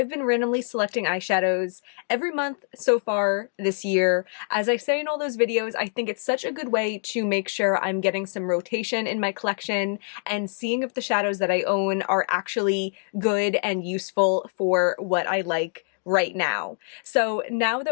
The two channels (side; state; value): right; silent; 62 dB below the other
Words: been randomly selecting eyeshadows every month so far this year. As I say in all those videos, I think it's such a good way to make sure I'm getting some rotation in my collection and seeing if the shadows that I own are actually good and useful for what I like right now. So now